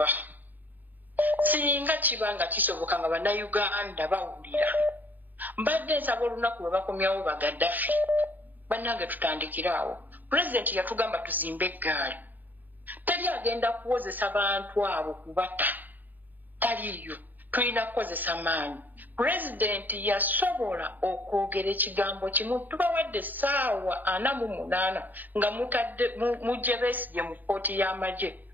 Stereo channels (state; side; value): late; left; 0.086 ms